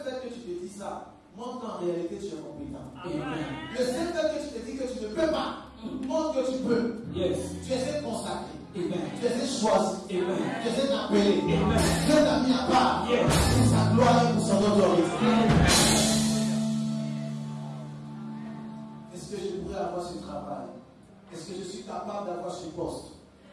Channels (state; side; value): identical; both; correlation 1.00